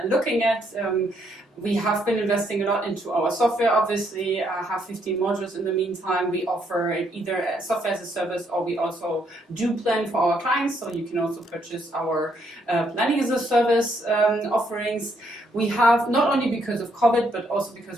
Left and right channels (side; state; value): both; normal; correlation 0.73